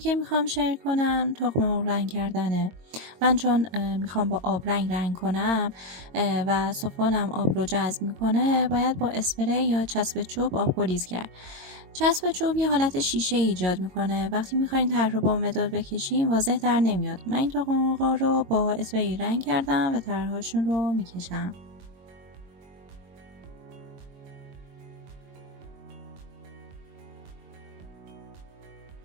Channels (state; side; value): late; left; 22 ms